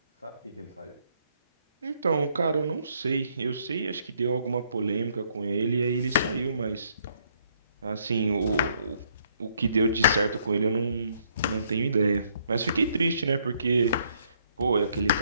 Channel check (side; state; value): both; inverted; correlation -0.69